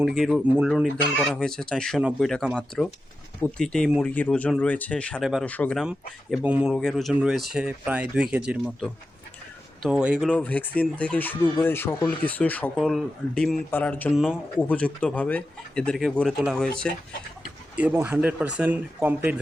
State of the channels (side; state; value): both; normal; correlation 0.91